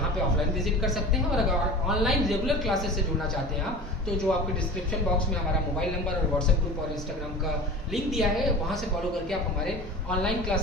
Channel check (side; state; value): both; normal; correlation 0.36